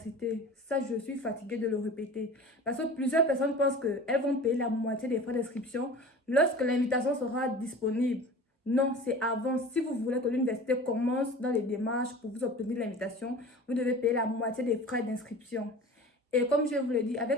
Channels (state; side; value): normal; both; correlation 0.38